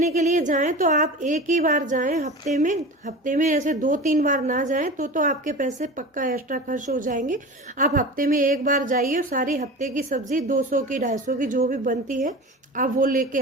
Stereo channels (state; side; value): normal; both; correlation 0.32